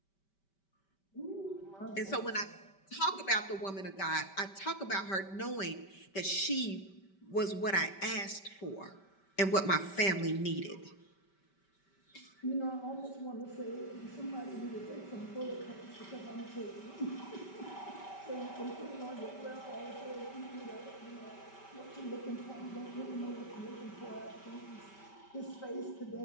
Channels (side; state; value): right; late; 5.2 ms